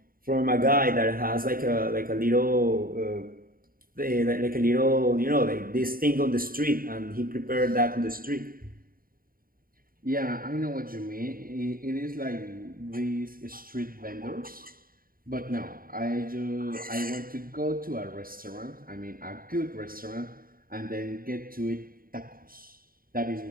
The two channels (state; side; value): late; left; 0.42 ms